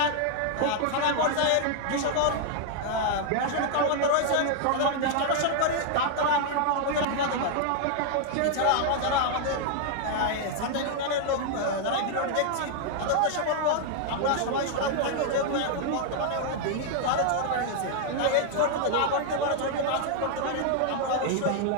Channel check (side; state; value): both; different; correlation 0.00